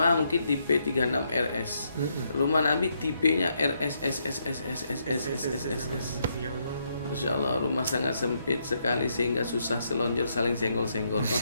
mungkin tipe 36 RS. Rumah Nabi tipenya RSSSSSSSSSS. Masya Allah, rumah sangat sempit sekali sehingga susah selonjor saling senggol-senggol.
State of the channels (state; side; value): inverted; both; correlation -0.77